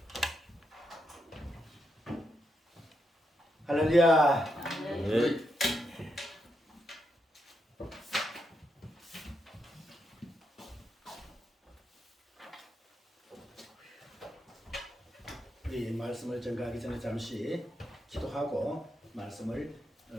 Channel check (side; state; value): both; normal; correlation 0.82